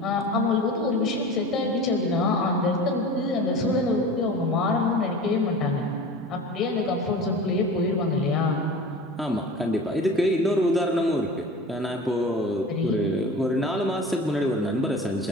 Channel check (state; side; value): normal; both; correlation 0.36